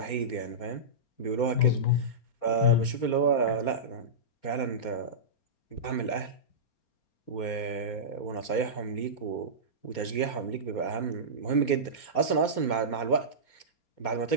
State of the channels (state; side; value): late; right; 4.3 ms